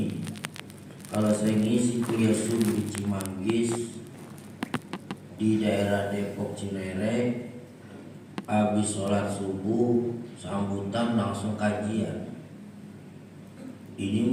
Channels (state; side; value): identical; both; correlation 1.00